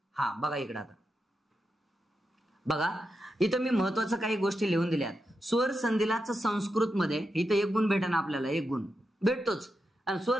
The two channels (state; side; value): normal; both; correlation 0.87